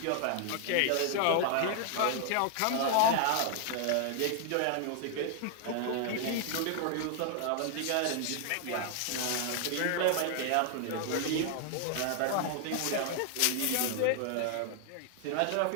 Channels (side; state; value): both; different; correlation 0.00